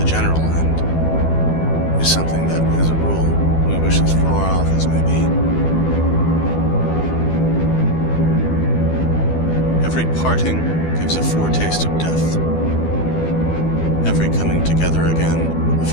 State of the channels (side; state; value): right; late; 12 ms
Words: general end, is something that, as a rule, we wish as far off as may be. Every parting gives a foretaste of death. Every coming together again, a